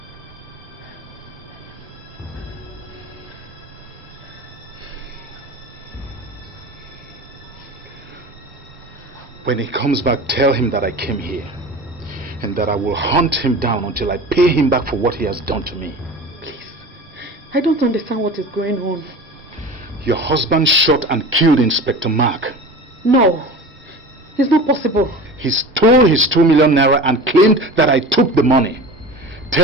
When he comes back, tell him that I came here and that I will hunt him down until I pay him back for what he has done to me. Please, I don't understand what is going on. Your husband shot and killed Inspector Mark. No, it's not possible. He stole his 2 million naira and claimed that I took the money.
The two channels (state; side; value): normal; both; correlation 0.35